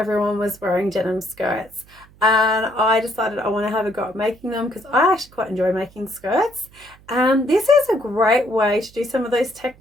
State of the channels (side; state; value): right; noise; hum, 26 dB below the sound